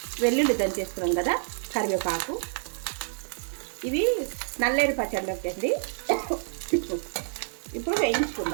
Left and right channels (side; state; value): left; silent; digital silence